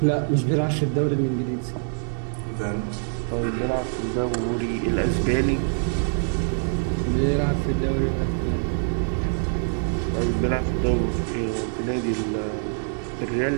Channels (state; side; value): silent; left; digital silence